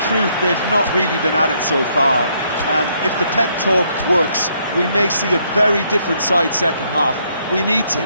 truth they've not really been at it so far. If the pep talk works, we may see a very different side second half. We need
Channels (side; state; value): both; inverted; correlation -0.71